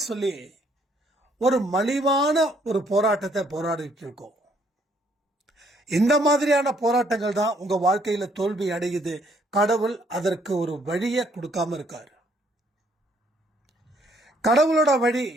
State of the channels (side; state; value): both; normal; correlation 0.67